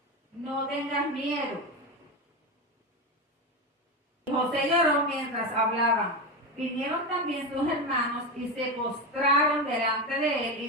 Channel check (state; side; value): normal; both; correlation 0.16